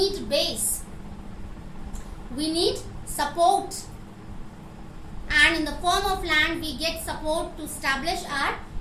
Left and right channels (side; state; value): both; identical; correlation 1.00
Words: base. We need support. And in the form of land, we get support to establish our